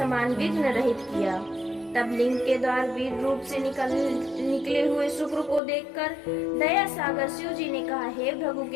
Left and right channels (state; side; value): drops out; right; at 5.6 s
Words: विघ्न रहित किया। तब लिंग के द्वार वीर रूप से निकले हुए शुक्र को देखकर दया सागर शिव जी ने कहा, हे भृगु